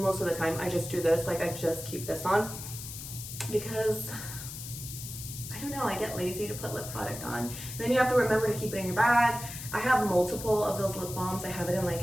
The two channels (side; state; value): left; noise; hiss, 10 dB below the sound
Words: of the time, I just do this. Like I just keep this on because I don't know, I get lazy to put lip product on. And then you have to remember to keep it in your bag. I have multiple of those lip balms. I have it in